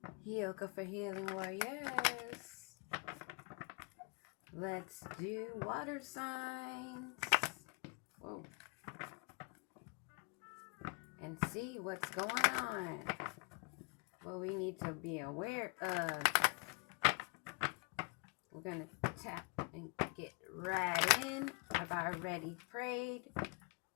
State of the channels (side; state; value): right; quieter; 32.3 dB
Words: Yoga for Healing Warriors. Let's do water signs. Whoa. And see what's going on. What we need to be aware of. We're going to tap and get right in. I've already prayed,